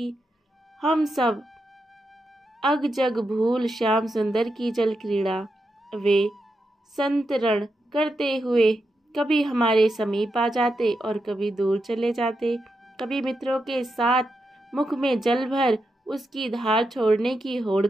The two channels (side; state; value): both; normal; correlation 0.86